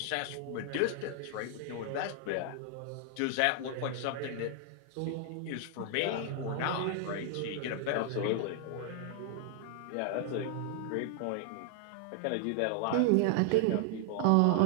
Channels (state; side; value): different; both; correlation 0.00